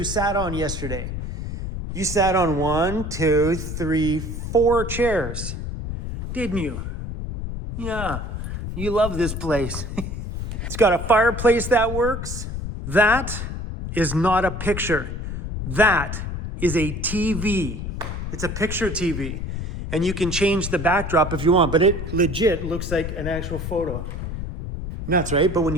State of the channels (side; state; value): left; noise; rumble, 5 dB below the sound